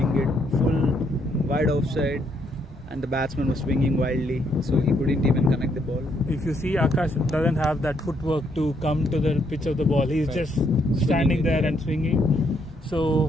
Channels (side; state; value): both; normal; correlation 0.73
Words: it full wide offside, and the batsman was swinging wildly, so he couldn't even connect the ball. If you see, Akash doesn't have that footwork to come to the pitch of the ball. He's just standing there and swinging.